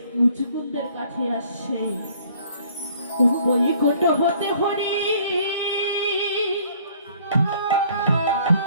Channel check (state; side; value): inverted; both; correlation -0.58